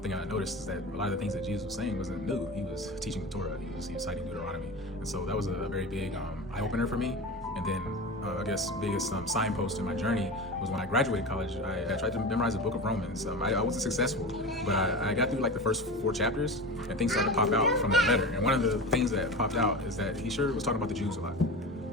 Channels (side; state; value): both; normal; correlation 0.28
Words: thing I noticed is that a lot of the things that Jesus was saying wasn't new. He was teaching the Torah. He was citing Deuteronomy. And so that was a very big eye-opener for me. And then I guess biggest signpost in my journey was when I graduated college. I tried to memorize the book of Romans. I wasn't successful, but I got through like the first 4 chapters, and things started to pop out from that letter. And one of the things that popped out is that he sure was talking about the Jews a lot.